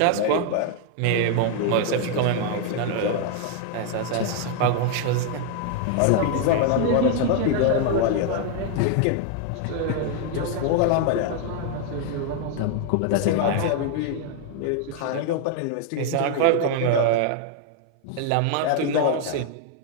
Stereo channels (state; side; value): different; both; correlation 0.00